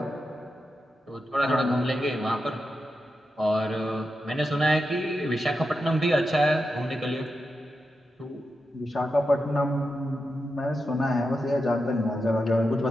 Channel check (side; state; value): both; normal; correlation 0.88